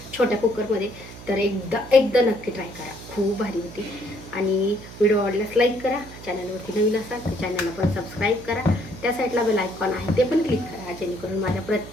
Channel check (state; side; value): noise; right; hum, 15 dB below the sound